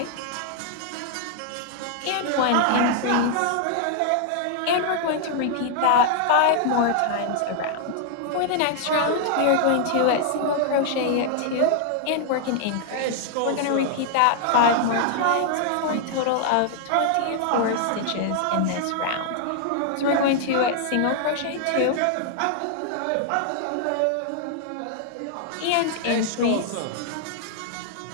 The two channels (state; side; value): different; both; correlation 0.00